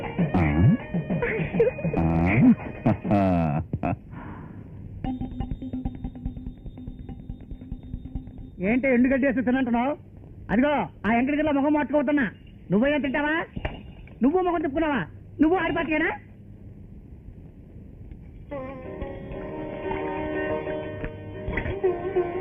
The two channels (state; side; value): identical; both; correlation 1.00